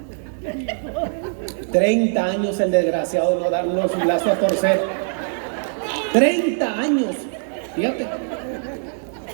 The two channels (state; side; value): silent; left; digital silence